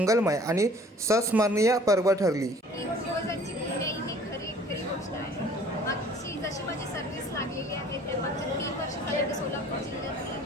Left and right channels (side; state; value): both; normal; correlation 0.52